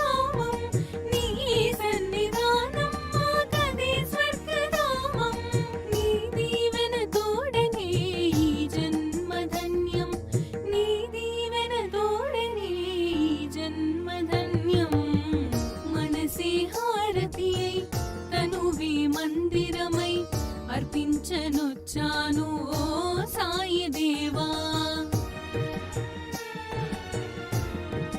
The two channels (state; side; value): identical; both; correlation 1.00